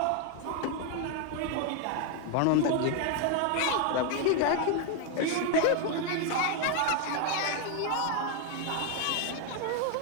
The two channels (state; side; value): different; both; correlation 0.01